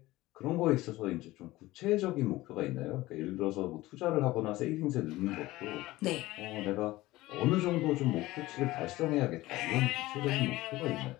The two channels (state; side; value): quieter; right; 18.1 dB